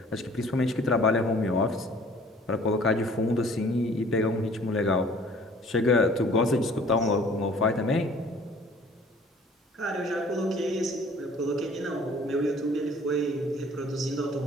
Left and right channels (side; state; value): both; normal; correlation 0.52